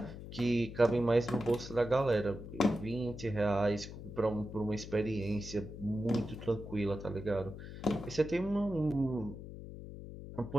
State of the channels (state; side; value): noise; left; hum, 11 dB below the sound